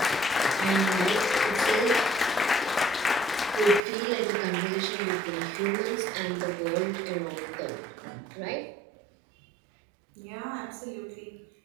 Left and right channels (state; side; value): drops out; left; at 3.8 s